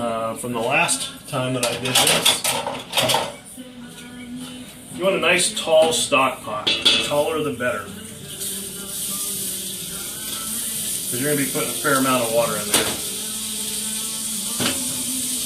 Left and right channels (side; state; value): both; identical; correlation 1.00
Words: from the last time that I did this. You want a nice tall stock pot. The taller the better. Because you're going to be putting a fair amount of water in there.